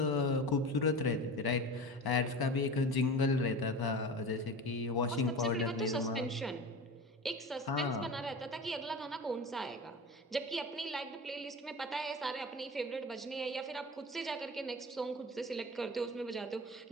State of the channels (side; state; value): both; normal; correlation 0.32